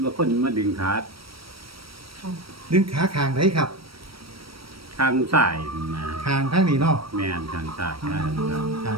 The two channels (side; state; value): left; late; 0.75 ms